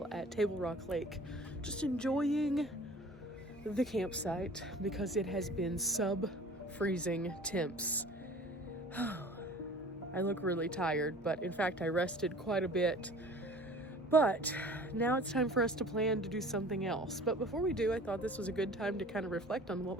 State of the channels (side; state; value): both; normal; correlation 0.45